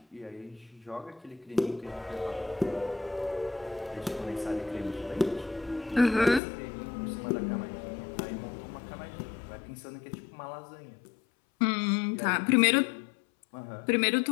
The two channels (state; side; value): drops out; right; at 6.4 s